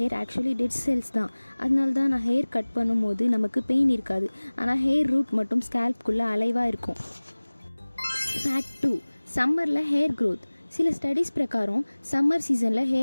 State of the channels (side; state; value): both; inverted; correlation -1.00